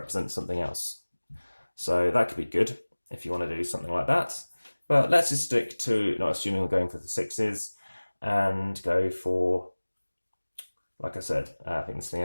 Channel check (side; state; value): both; inverted; correlation -1.00